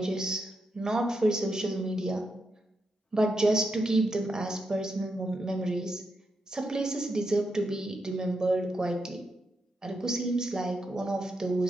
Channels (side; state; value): both; normal; correlation 0.84